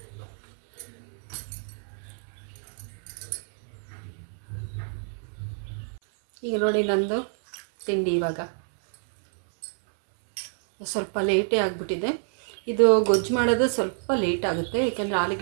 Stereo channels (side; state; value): left; silent; 60 dB below the other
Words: ಈಗ ನೋಡಿ ನಂದು ತಿಂಡಿ ಇವಾಗ ಸ್ವಲ್ಪ ಲೇಟೇ ಆಗಿಬಿಟ್ಟಿದೆ. ಇದು ಗೊಜ್ಜು ಮಾಡೋದು ಸ್ವಲ್ಪ ಲೇಟ್ ಆಗುತ್ತೆ, ಏಕೆಂದರೆ